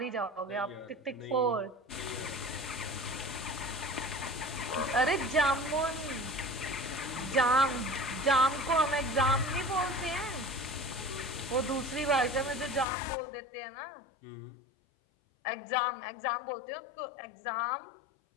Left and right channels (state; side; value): drops out; right; at 12.9 s